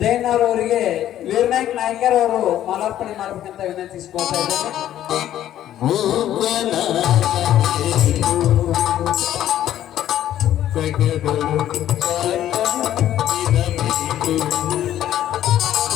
ಜೈನರ್ ಅವರಿಗೆ ವೀರನಾಯಕ್ ನಾಯ್ಕರ್ ಅವರು ಮಾಲಾರ್ಪಣೆ ಮಾಡಬೇಕಂತ ವಿನಂತಿಸಿಕೊಳ್ತಾ ಇದ್ದಾರೆ.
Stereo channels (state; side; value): quieter; right; 12.0 dB